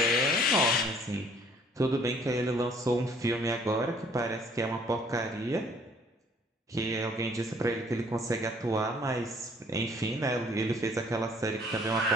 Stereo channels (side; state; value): both; normal; correlation 0.59